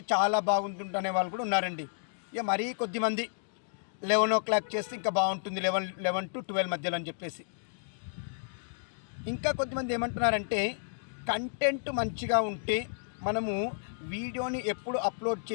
చాలా బాగుంటుందనే వాళ్ళు కూడా ఉన్నారండి. ఇక మరీ కొద్దిమంది 11 o'clock చేస్తే ఇంకా బాగుంటుంది, 11 to 12 మధ్యలో అని చెప్పేసి. ఇంకా కొద్దిమంది ఏమంటున్నారంటే కంటెంట్ మంచిగా ఉంటే మనము వీడియోని ఎప్పుడు అప్లోడ్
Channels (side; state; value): right; silent; digital silence